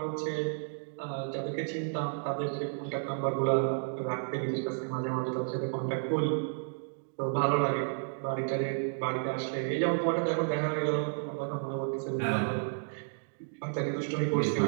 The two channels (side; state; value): left; silent; digital silence